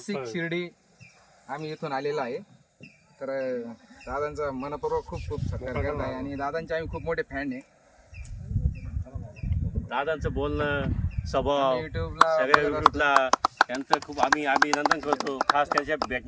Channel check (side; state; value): both; identical; correlation 1.00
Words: शिर्डी आम्ही इथून आलेलो आहे. तर दादांचा मनपूर्वक खूप खूप सत्कार करत आहे आणि दादांचे आम्ही खूप मोठे फॅन आहे. दादांचं बोलणं स्वभाव युट्यूबला सगळ्या युट्यूबला त्यांचं खूप आम्ही अभिनंदन करतो. खास त्यांच्या